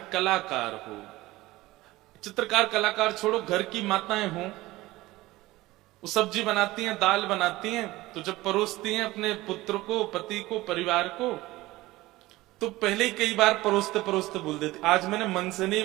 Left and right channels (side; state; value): left; quieter; 18.6 dB